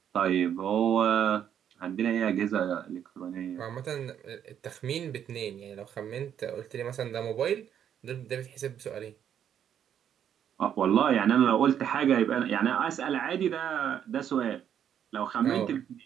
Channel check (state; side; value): quieter; left; 9.3 dB